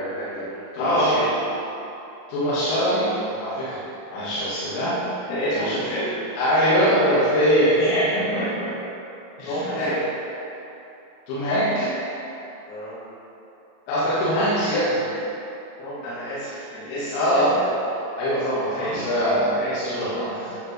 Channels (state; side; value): late; right; 38 ms